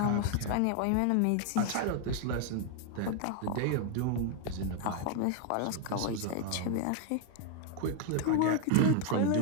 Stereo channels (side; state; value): both; different; correlation 0.00